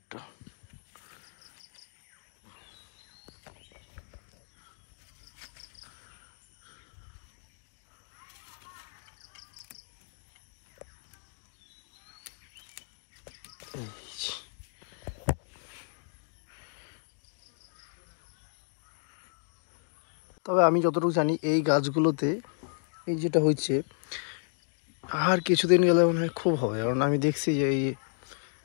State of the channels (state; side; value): silent; right; digital silence